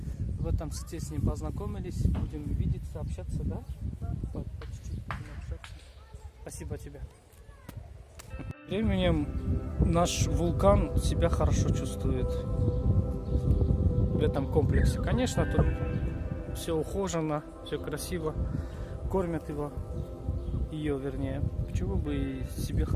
В этом сети с ним познакомились, будем видеться, общаться, да? Да. По чуть-чуть будем общаться. Спасибо тебе. Временем наш вулкан себя хорошо чувствует в этом комплексе. Конечно, тут все ухожено, все красиво, кормят его, ее вернее. Почему бы и себе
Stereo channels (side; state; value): both; identical; correlation 1.00